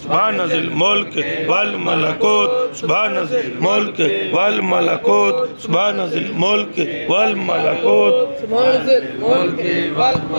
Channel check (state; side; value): inverted; both; correlation -1.00